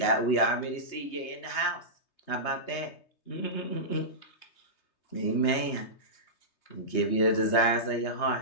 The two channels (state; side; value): late; right; 3.2 ms